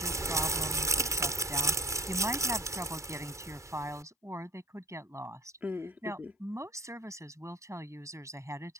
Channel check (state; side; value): normal; both; correlation 0.42